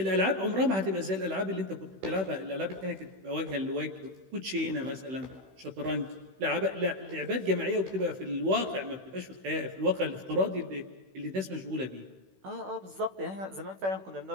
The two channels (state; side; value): late; left; 16 ms